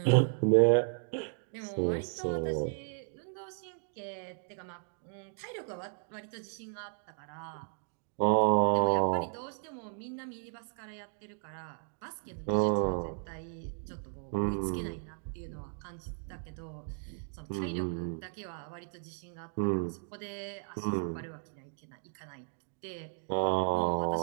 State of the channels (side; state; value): left; silent; 55 dB below the other